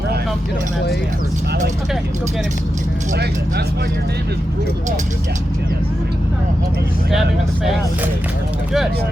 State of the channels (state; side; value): normal; both; correlation 0.89